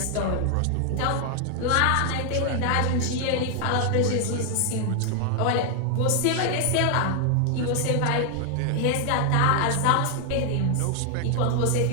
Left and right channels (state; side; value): different; both; correlation 0.00